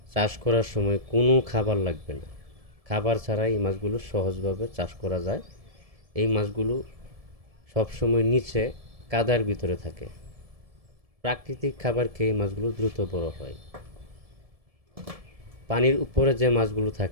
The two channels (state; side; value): late; left; 1.7 ms